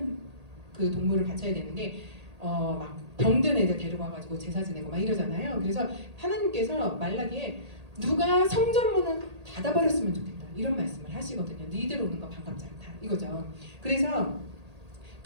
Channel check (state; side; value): late; left; 1.8 ms